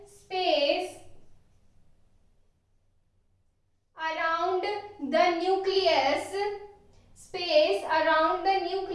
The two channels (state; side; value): identical; both; correlation 1.00